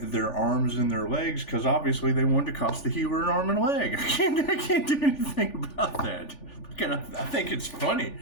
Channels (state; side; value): late; right; 3.4 ms